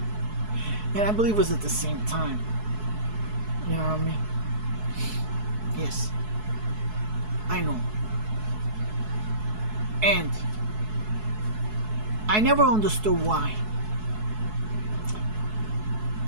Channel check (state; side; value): late; left; 4.7 ms